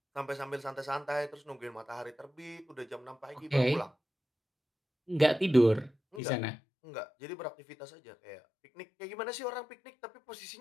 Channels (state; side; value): drops out; right; at 6.2 s